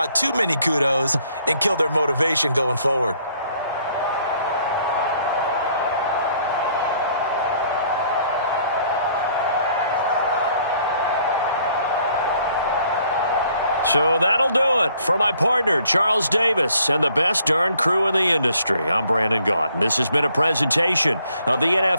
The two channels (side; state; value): both; inverted; correlation -0.64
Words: too many kudos and kill their motivation going forward. So that'll do it for my partner, Charles Davis, and the best darn crew in the industry. I'm Brandon Gaudin. This has been a presentation of the